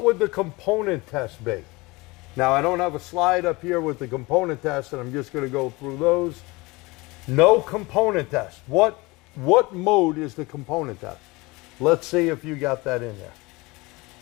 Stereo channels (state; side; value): quieter; right; 23.5 dB